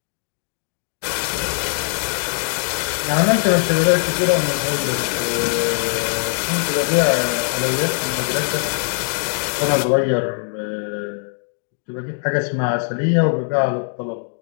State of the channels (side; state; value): right; silent; digital silence